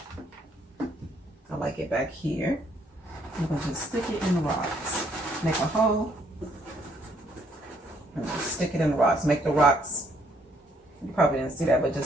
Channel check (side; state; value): both; normal; correlation 0.68